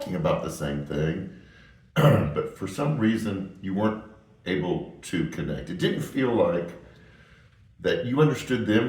about the same thing, but for some reason you weren't able to connect. It didn't feel like that you understood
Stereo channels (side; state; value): both; identical; correlation 1.00